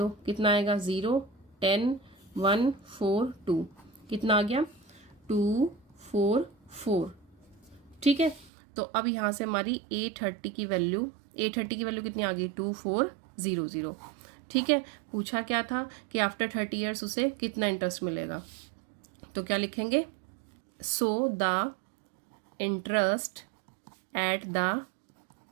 कितना आएगा 0 10 1 4 2, कितना आ गया 244। ठीक है, तो अब यहाँ से हमारी A30 की वैल्यू कितनी आ गई 2400। ठीक है, पूछा क्या था कि आफ्टर 30 ईयर्स उसे कितना इंटरेस्ट मिलेगा, तो क्या लिखेंगे, so the interest at the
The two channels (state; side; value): drops out; left; at 8.5 s